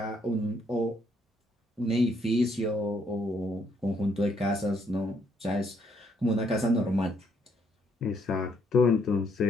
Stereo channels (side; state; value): both; normal; correlation 0.70